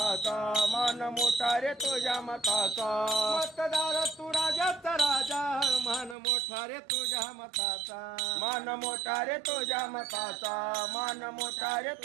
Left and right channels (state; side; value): drops out; left; at 6.2 s